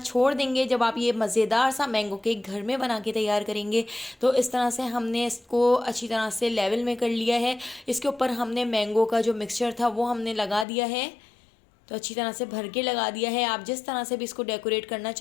देंगे जब आप ये मज़ेदार सा मैंगो केक घर में बना के तैयार करेंगे। तो इस तरह से हमने इसको अच्छी तरह से लेवल में कर लिया है। इसके ऊपर हमने मैंगो का जो मिक्सचर था वो हमने लगा दिया है, तो अच्छी तरह से भर के लगा दिया है। आप जिस तरह से भी इसको डेकोरेट करना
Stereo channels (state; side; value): drops out; right; at 10.7 s